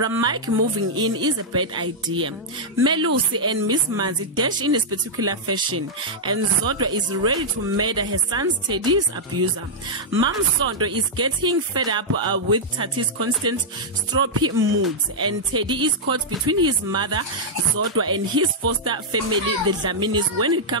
moving in is a bad idea. Melusi and Miss Manzi dash in a spectacular fashion, and Zodwa is ready to murder her son's Teddy's abuser. Mom Sondo is getting fed up with Tati's constant stroppy moods, and Teddy is caught between his mother Zodwa and his foster family, the Dlaminis, when it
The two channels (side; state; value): both; normal; correlation -0.07